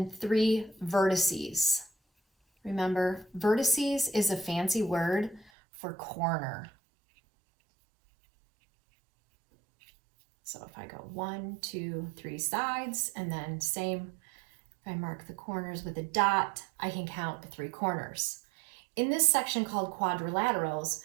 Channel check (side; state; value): left; drops out; at 5.5 s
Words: 3 vertices. Remember, vertices is a fancy word for corner. So if I go 1, 2, 3 sides, and then same, if I mark the corners with a dot, I can count the 3 corners. In this section called quadrilaterals,